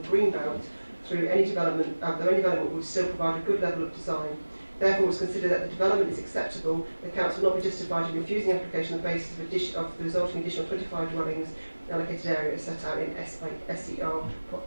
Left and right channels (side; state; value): both; inverted; correlation -1.00